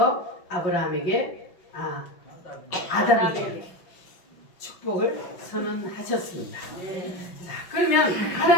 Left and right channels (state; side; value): late; right; 5.5 ms